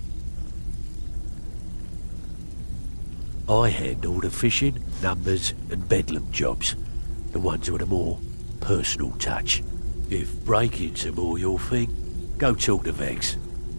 I handle the fishing, numbers and bedlam jobs. The ones with a more personal touch. If break-ins are more your thing, go talk to Vex.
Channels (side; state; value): both; inverted; correlation -1.00